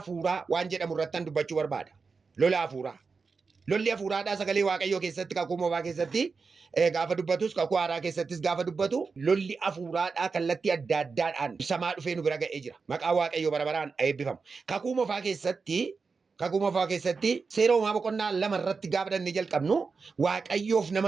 waan jedhamu irratti dubbachuu barbaada. Lola afuuraa. Lolli afuuraadhaa sagalee waaqayyoo keessatti kakuu moofaa keessatti gaafa dubbatus kakuu haaraa keessattis gaafa dubbatu lolli afuuraadhaa kallattii adda addaadhaan ibsamaa dhufee nu bira ga'ee jira. Maqaa waaqayyoo bara baraan eebbifamu. Kakuu moofaa keessatti seera uumaa boqonnaa 2 irratti gaafa dhannee jalqabnu waaqayyoof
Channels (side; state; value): left; quieter; 4.8 dB